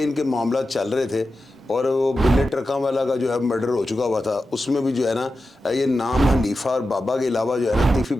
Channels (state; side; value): normal; both; correlation 0.91